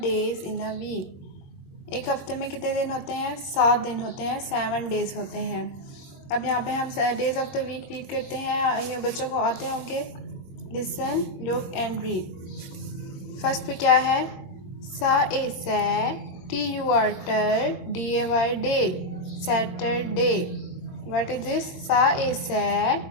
days in a week. एक हफ्ते में कितने दिन होते हैं? 7 दिन होते हैं, 7 डेज़ होते हैं। अब यहाँ पे हम days of the week read करते हैं। ये बच्चों को आते होंगे। Listen, look and read. First पे क्या है? S A sa, T U R tur, D A Y day, Saturday. What is this? S A sa,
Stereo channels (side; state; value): right; late; 22 ms